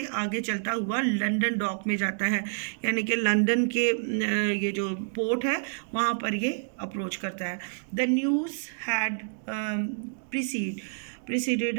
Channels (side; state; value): left; silent; digital silence